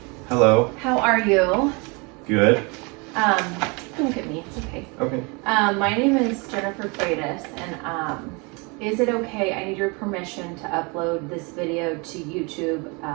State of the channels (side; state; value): left; quieter; 29.9 dB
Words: Hello. How are you? Good. Don't look at me, it's okay. Okay. My name is Jennifer Freitas, and is it okay, I need your permission to upload this video to YouTube